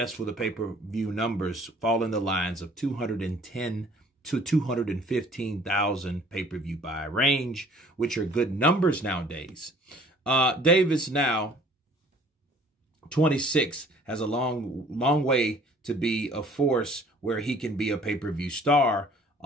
for the pay-per-view numbers fall in the lines of 210 to 215,000 pay-per-view buy range, which are good numbers nowadays. Davis now 26 has a long way to be a force where he can be a pay-per-view star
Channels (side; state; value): both; normal; correlation 0.54